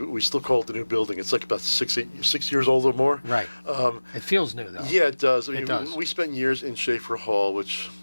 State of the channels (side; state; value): both; inverted; correlation -1.00